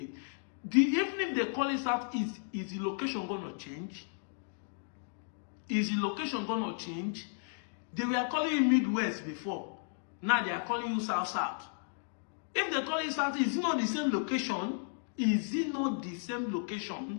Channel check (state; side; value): silent; right; digital silence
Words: Even if they call it Southeast, is the location going to change? Is the location going to change? They were calling you Midwest before. Now they are calling you South-South. If they call it Southeast, is it not the same location? Is it not the same